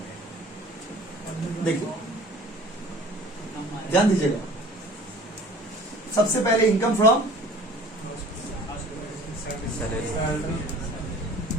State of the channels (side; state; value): both; normal; correlation 0.46